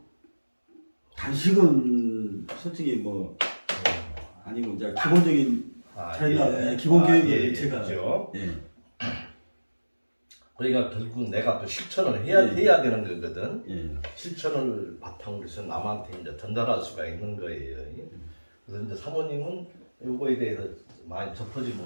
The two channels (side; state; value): both; inverted; correlation -1.00